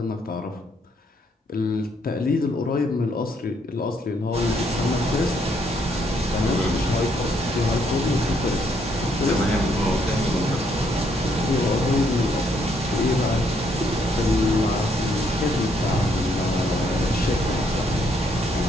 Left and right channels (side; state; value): both; normal; correlation 0.71